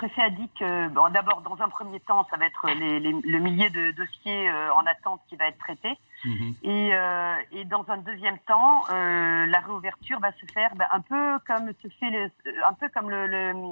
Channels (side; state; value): both; inverted; correlation -1.00